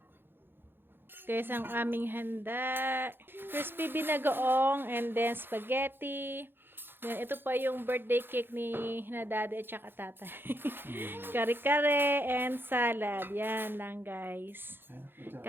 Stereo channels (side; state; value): left; late; 0.10 ms